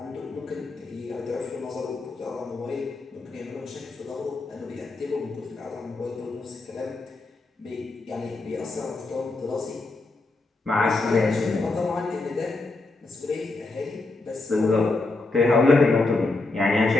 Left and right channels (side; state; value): right; quieter; 3.3 dB